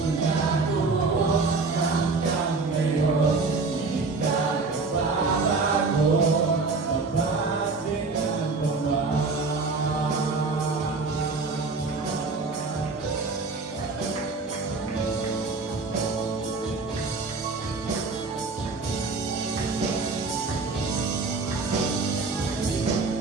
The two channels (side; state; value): left; quieter; 4.0 dB